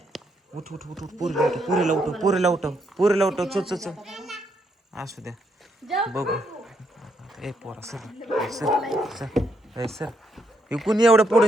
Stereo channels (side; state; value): both; normal; correlation 0.76